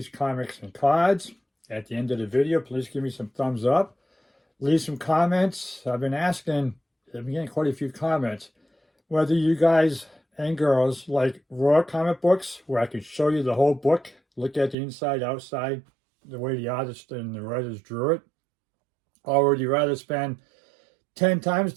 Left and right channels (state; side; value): drops out; left; at 14.8 s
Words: Comics and Cards. At the end of the video, please give me some thumbs up. Leave some comments. I've been getting quite a few comments, whether you guys and girls like raw comic books, where I can show you the whole book, look at the inside, outside, the way the artist and the writers drew it, or would you rather spend 10 times